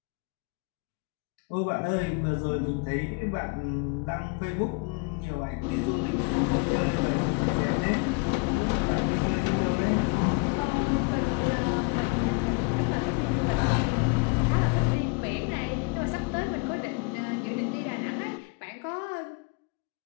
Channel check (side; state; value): right; quieter; 30.1 dB